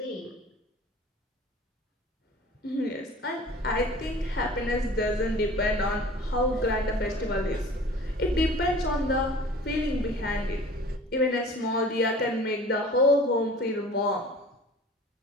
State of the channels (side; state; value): both; normal; correlation 0.44